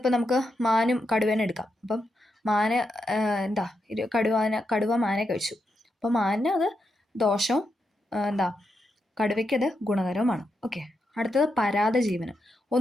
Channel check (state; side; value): normal; both; correlation 0.84